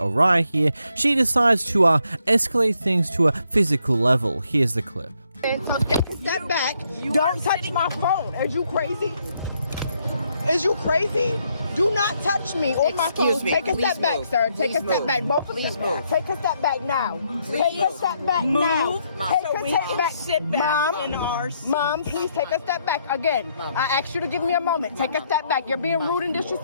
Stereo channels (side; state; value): both; inverted; correlation -0.74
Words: here, she decides to escalate things to a physical level. Here's the clip. So take a step back. Don't touch my phone. Is you crazy? Is you crazy? Do not touch me or my phone. Take a step back, sir. Take a step back. Both of you. Take a step back now. Take a step back now. Take a step back. Sit back in our seat. Mom, please take a step back again. I asked you to give me a moment. Take a step back. You're being rude and